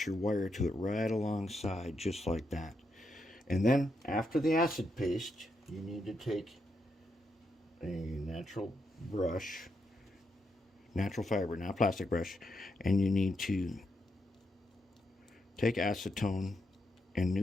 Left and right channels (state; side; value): normal; both; correlation 0.82